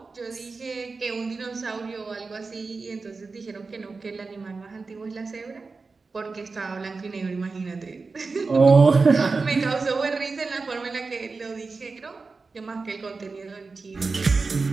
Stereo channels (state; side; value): quieter; left; 4.2 dB